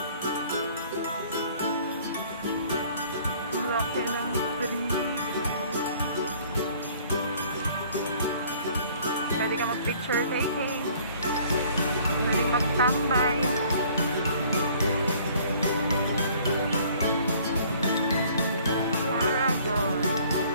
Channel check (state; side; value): inverted; both; correlation -0.55